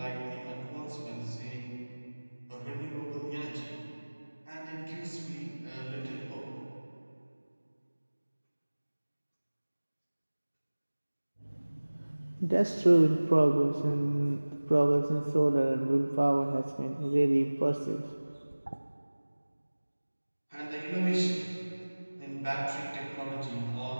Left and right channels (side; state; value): both; inverted; correlation -1.00